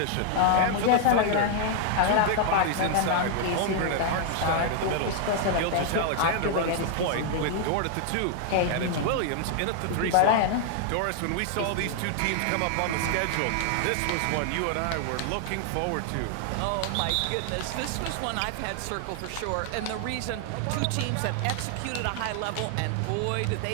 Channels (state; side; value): different; both; correlation 0.00